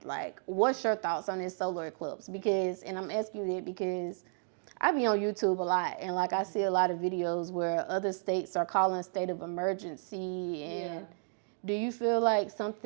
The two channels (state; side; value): silent; left; 56 dB below the other